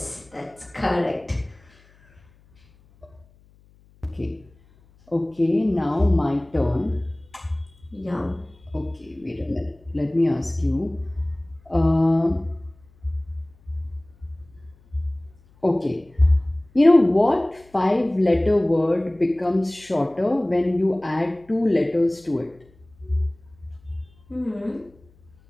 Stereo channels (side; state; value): left; noise; hum, 29 dB below the sound